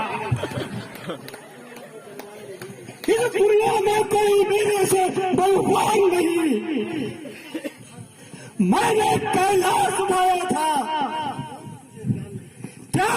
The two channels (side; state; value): both; identical; correlation 1.00